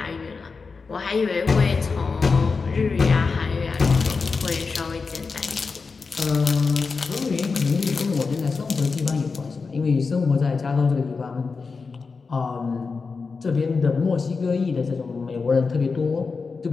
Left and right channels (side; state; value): right; quieter; 4.6 dB